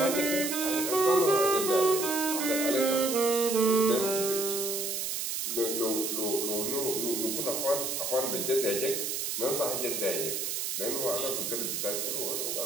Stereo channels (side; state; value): right; noise; hiss, 2 dB below the sound